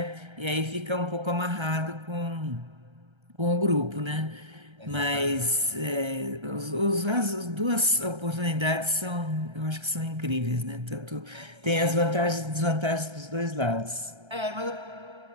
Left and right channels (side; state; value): left; late; 1.3 ms